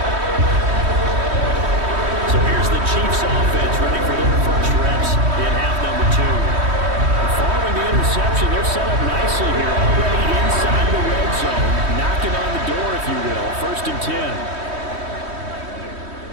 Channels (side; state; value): left; late; 3.1 ms